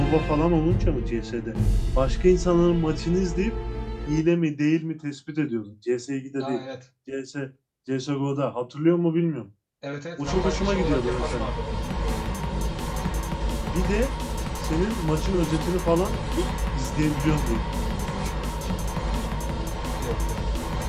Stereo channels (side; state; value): both; identical; correlation 1.00